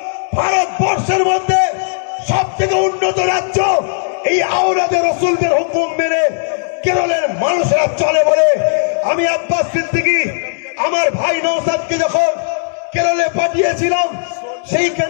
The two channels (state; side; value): silent; right; digital silence